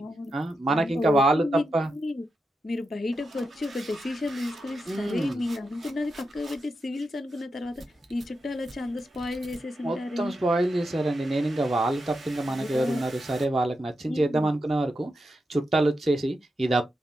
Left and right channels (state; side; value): normal; both; correlation 0.87